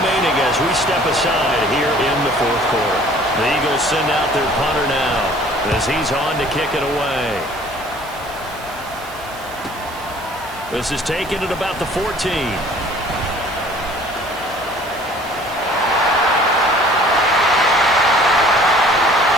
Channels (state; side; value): noise; right; hiss, 19 dB below the sound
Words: as we step aside here in the 4th quarter. The Eagles send out their punter now as he's on to kick it away. This is taken at about the 14.